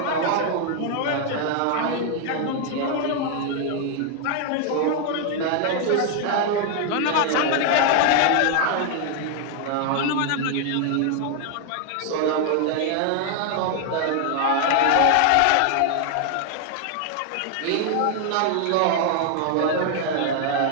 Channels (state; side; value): different; both; correlation 0.00